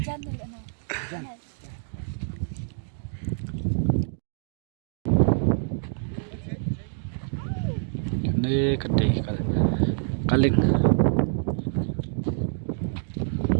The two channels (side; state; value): left; silent; digital silence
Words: Ini gede kaling.